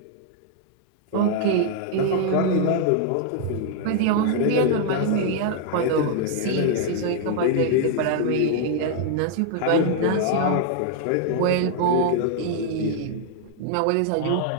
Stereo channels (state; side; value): different; both; correlation 0.00